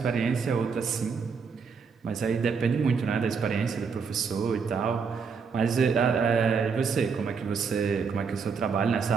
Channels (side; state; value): left; quieter; 5.6 dB